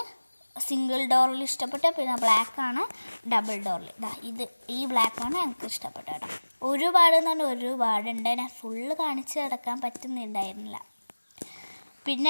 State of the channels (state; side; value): inverted; both; correlation -1.00